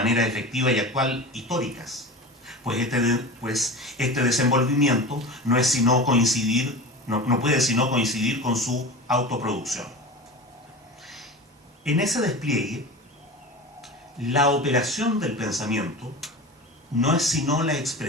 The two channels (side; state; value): both; normal; correlation 0.31